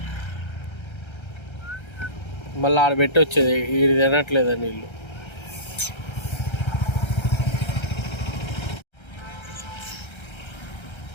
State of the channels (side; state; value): right; late; 1.3 ms